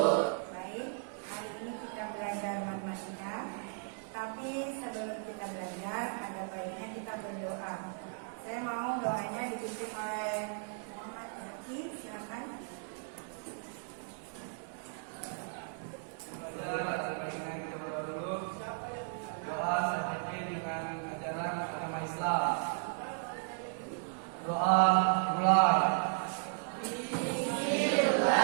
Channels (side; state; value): left; silent; 54 dB below the other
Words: Baik, hari ini kita belajar matematika. Tapi sebelum kita belajar, ada baiknya kita berdoa. Saya mau doanya dipimpin oleh Muhammad Zaki, silakan. Doa seperti dengan ajaran agama Islam. Doa mulai.